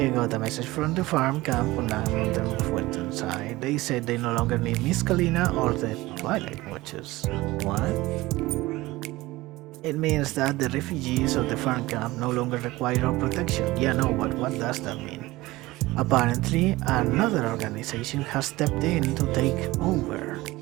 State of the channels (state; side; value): quieter; left; 19.3 dB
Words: got a message from the farm camp on the mountain side. They said they no longer need Miss Kalina or the Twilight Watchers. What? It means that the refugees of the farm camp no longer require our protection. Yeah, no, but what does that mean? Apparently, another organization has stepped in to take over.